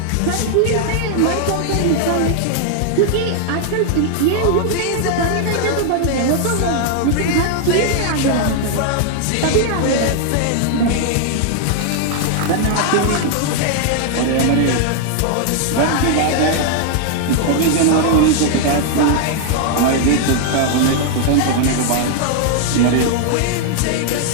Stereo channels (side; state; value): both; different; correlation 0.00